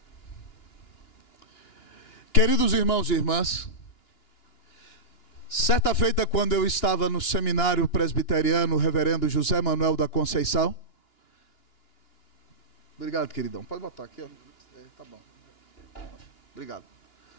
Queridos irmãos e irmãs, certa feita, quando eu estava no seminário presbiteriano, o reverendo José Manuel da Conceição. Obrigado, queridão. Pode botar aqui, ó. Tá bom. Obrigado.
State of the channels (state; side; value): late; right; 2.9 ms